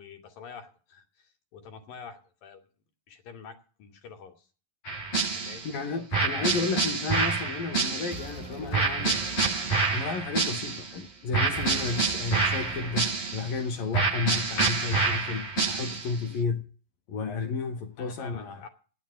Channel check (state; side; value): late; right; 11 ms